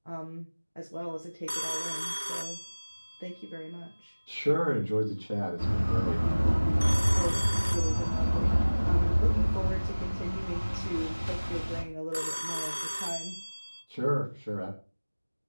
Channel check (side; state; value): both; inverted; correlation -1.00